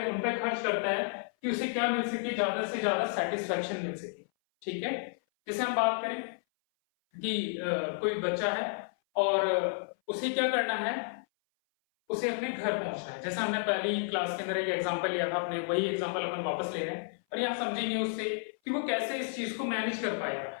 उन पर खर्च करता है कि उसे क्या मिल सके? ज्यादा से ज्यादा सेटिस्फैक्शन मिल सके। ठीक है, जैसे हम बात करें कि कोई बच्चा है और उसे क्या करना है? उसे अपने घर पहुंचना है। जैसा हमने पहली क्लास के अंदर एक एग्जांपल लिया था, अपने वही एग्जांपल अपन वापस ले रहे हैं और यहाँ समझेंगे उससे कि वो कैसे इस चीज को मैनेज कर पाएगा,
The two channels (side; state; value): right; silent; 57 dB below the other